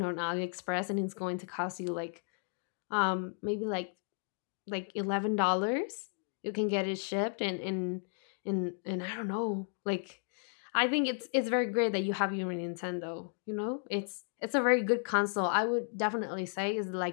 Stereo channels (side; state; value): right; silent; 55 dB below the other